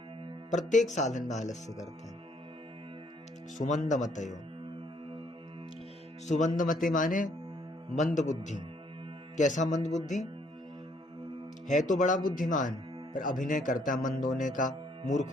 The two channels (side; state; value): both; normal; correlation 0.66